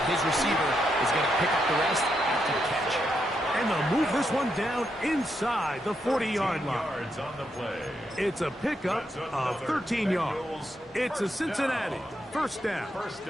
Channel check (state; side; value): normal; both; correlation 0.81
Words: his receiver is going to pick up the rest after the catch. And they'll move this one down inside the 40-yard line. Yards on the play. It's a pickup of 13 yards. It's a Cincinnati 1st down. 1st